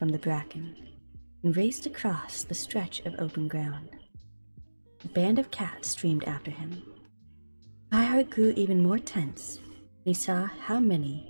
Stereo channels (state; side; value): inverted; both; correlation -1.00